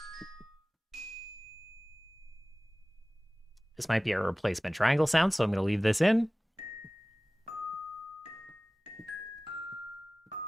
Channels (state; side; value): normal; both; correlation 0.97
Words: This might be a replacement triangle sound, so I'm gonna leave this in.